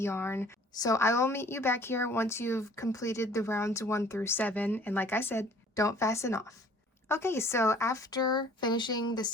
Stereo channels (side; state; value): both; normal; correlation 0.53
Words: So I will meet you back here once you've completed the rounds 1 through 7. And like I said, don't fasten off. Okay, so after finishing the